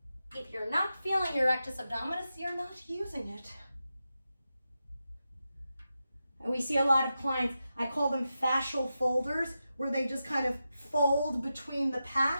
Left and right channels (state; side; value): inverted; both; correlation -0.90